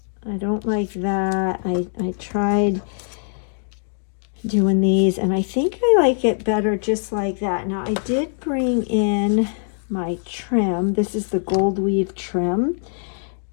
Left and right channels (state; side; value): silent; right; digital silence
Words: don't like that. I tried doing these, and I think I like it better just like that. Now, I did bring in my trim. This is the gold weave trim,